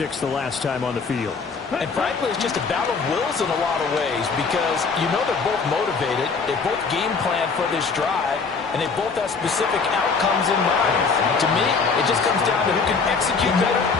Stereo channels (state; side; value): quieter; right; 4.9 dB